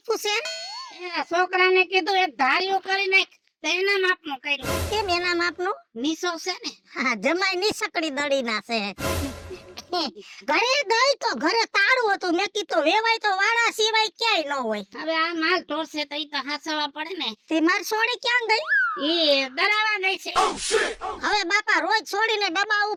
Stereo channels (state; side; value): identical; both; correlation 1.00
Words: છે એ છોકરાને કીધું એક ધાર્યું કરી નાખ તો એના માપનું કર્યું કેમ એના માપનું? નીસો છે ને હા, જમાઈ નીસકડી દળી ના છે. ઘરે દઈ તો ઘરે તાળું હતું, મેં કીધું વેવાય તો વાળા સિવાય ક્યાંય ન હોય. હવે આ માલ ઢોરશે તો ઈ તો હાસવા પડે ને. તે માર સોડી ક્યાં ગઈ? ઈ દરાવા ગઈ છે. હવે બાપા રોજ છોડીને ડબ્બા